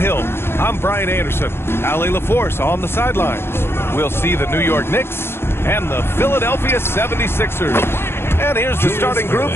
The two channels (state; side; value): late; right; 0.11 ms